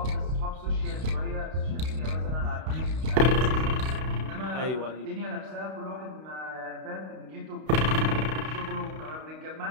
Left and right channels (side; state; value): left; late; 32 ms